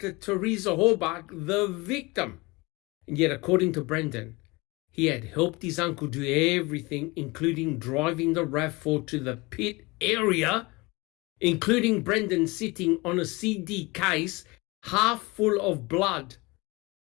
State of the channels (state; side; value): quieter; right; 24.3 dB